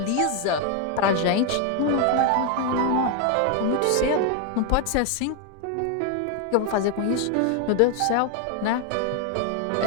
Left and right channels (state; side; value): different; both; correlation 0.01